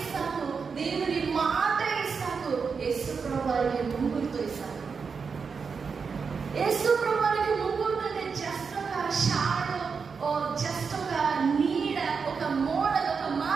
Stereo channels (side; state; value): left; quieter; 5.5 dB